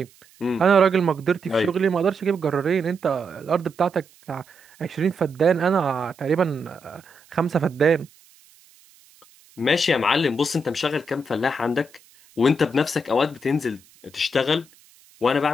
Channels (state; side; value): noise; right; hiss, 28 dB below the sound